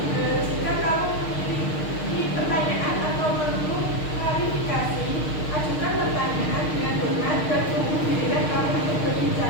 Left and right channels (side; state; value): right; late; 6.5 ms